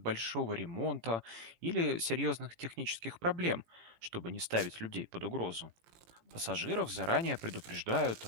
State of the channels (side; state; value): left; late; 18 ms